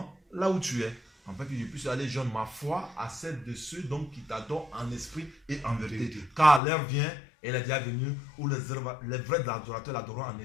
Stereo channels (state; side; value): drops out; right; at 6.6 s